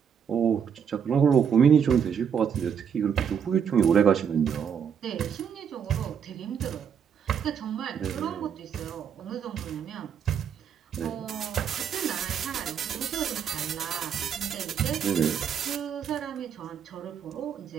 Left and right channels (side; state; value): left; quieter; 7.6 dB